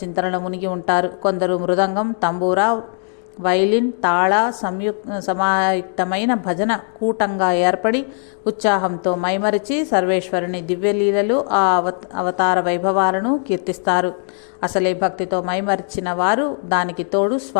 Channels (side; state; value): right; silent; 55 dB below the other